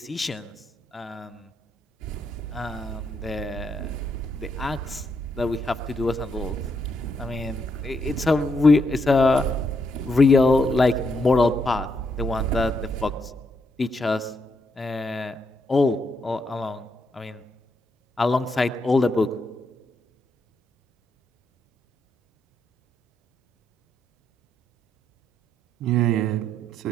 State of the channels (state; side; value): normal; both; correlation 0.78